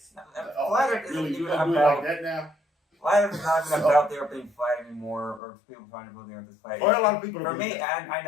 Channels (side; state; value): right; drops out; at 5.4 s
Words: Flat Earth isn't even about like that now. Flat Earth is not even about the Earth being flat anymore, or people trying to believe the Earth is flat. Or a lot of people. For me, and I